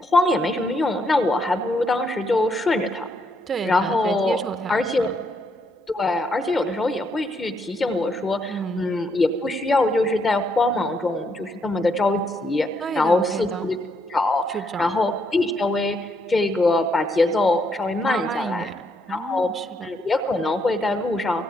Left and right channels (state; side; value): normal; both; correlation 0.75